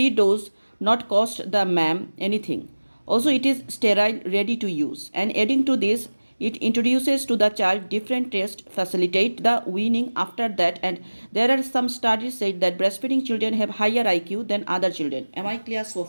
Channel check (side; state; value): both; inverted; correlation -1.00